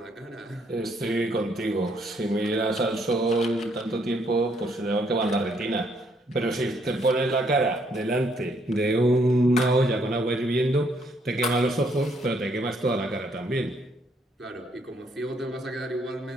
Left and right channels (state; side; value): normal; both; correlation 0.70